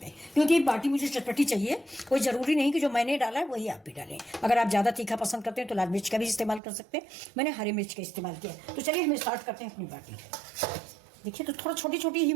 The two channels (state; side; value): drops out; left; at 6.6 s